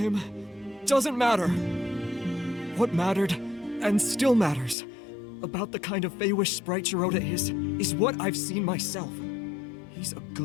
doesn't matter. What mattered, and still matters, about the kind of Feywish sprite Jiroda is what I've seen myself. He's a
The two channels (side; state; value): right; drops out; at 4.8 s